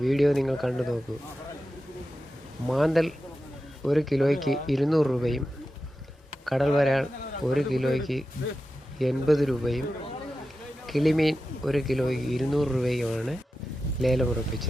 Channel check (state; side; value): normal; both; correlation 0.92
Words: വീഡിയോ നിങ്ങൾ കണ്ടു നോക്കൂ. മാന്തൽ 1 കിലോയ്ക്ക് 200 രൂപയും കടൽ വരാൽ 1 കിലോയ്ക്ക് 80 രൂപയും കിളിമീൻ 1 കിലോയ്ക്ക് 200 രൂപയുമാണ്